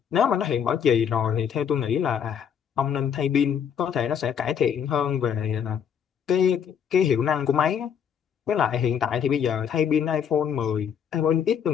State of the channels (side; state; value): right; quieter; 7.9 dB